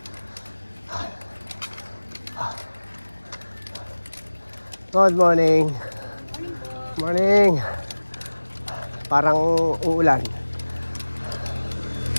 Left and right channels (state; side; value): inverted; both; correlation -1.00